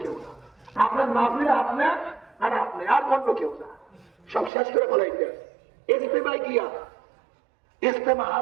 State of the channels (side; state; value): left; drops out; at 4.5 s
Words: কেউ না। আপনার মাহফিলে আপনার আর আপনি, আর অন্য কেউ না। সব শেষ করে ফেলাইতে ইজতেমায় গিয়া, ইজতেমা